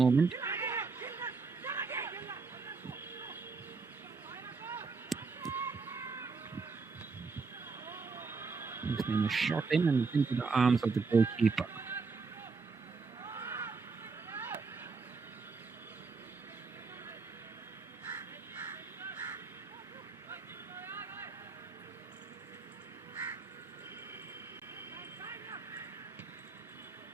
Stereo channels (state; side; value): quieter; left; 4.5 dB